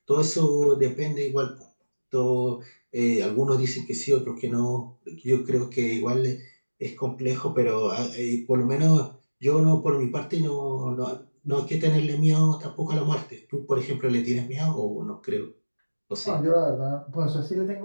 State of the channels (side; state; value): both; inverted; correlation -1.00